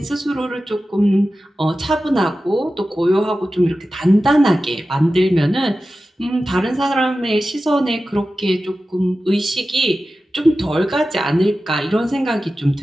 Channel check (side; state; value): both; normal; correlation 0.94